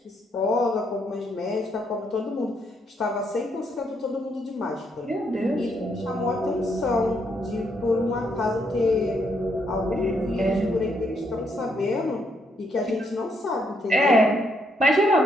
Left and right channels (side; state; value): both; normal; correlation 0.74